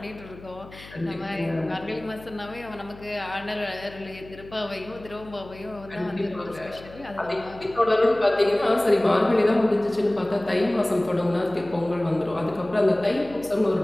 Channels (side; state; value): left; noise; hum, 19 dB below the sound